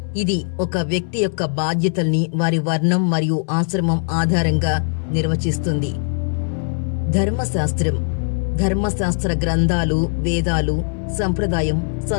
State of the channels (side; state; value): right; silent; digital silence